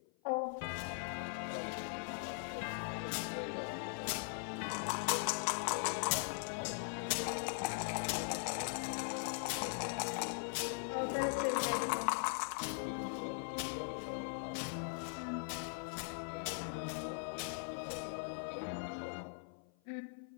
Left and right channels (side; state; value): right; silent; 51 dB below the other